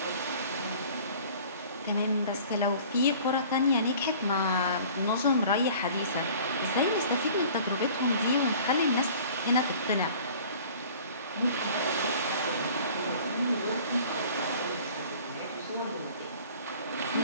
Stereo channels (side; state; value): both; inverted; correlation -0.47